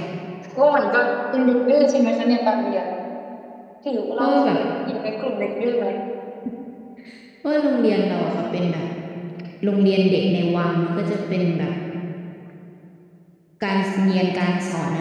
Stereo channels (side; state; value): both; identical; correlation 1.00